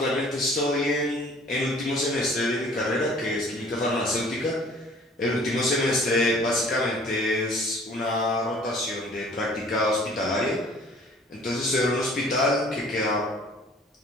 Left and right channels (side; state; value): both; normal; correlation 0.52